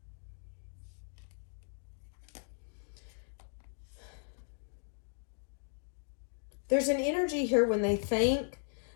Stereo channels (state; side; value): silent; right; digital silence